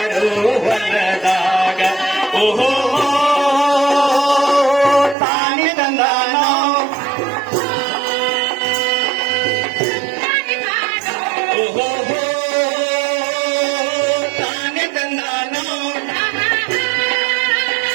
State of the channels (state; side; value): drops out; left; at 5.2 s